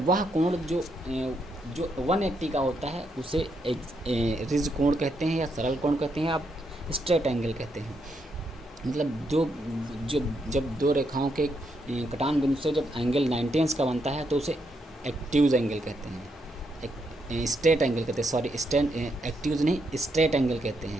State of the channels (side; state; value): both; normal; correlation 0.79